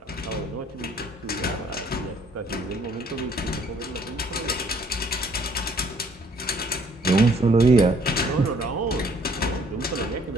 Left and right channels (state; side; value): normal; both; correlation 0.61